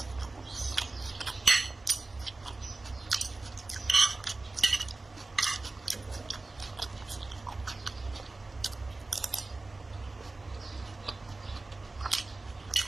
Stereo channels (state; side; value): quieter; left; 3.3 dB